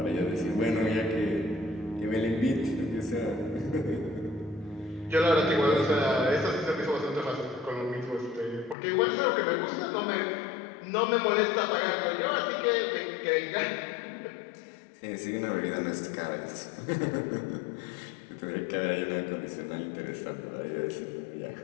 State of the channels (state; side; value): drops out; right; at 8.8 s